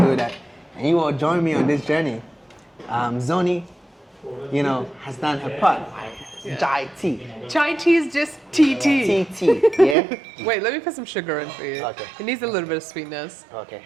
that. And you will join me on this journey. Zonyi, has done her part. Chai tea. Chai tea is just tea. Tea, yeah? Wait, let me put some sugar in for you. Okay. It needs a little bit of sweetness. Okay.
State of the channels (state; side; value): drops out; left; at 10.0 s